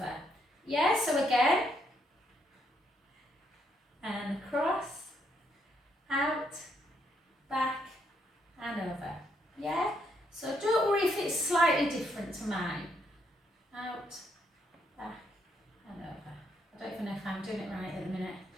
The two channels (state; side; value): normal; both; correlation 0.75